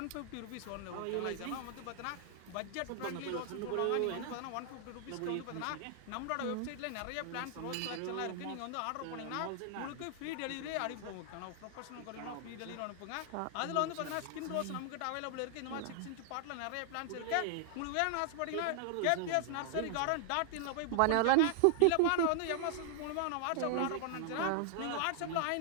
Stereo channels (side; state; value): both; different; correlation 0.00